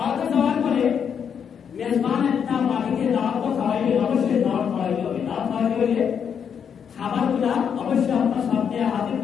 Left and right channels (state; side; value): quieter; right; 7.5 dB